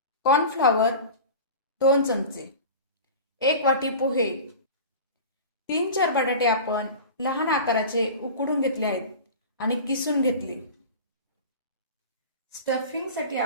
कॉर्नफ्लॉवर 2 चमचे, 1 वाटी पोहे, 3-4 बटाटे आपण लहान आकाराचे उकडून घेतले आहेत आणि किसून घेतले। स्टफिंगसाठी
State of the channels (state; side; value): inverted; both; correlation -0.34